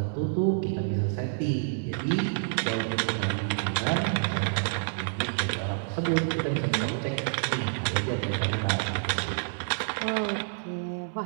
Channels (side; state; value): left; silent; 59 dB below the other